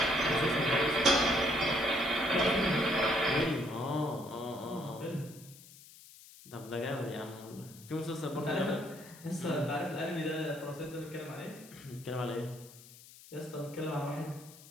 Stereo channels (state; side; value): noise; left; hiss, 20 dB below the sound